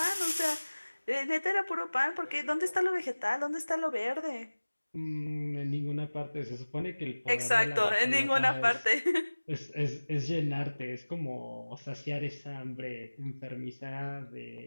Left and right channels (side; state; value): both; inverted; correlation -1.00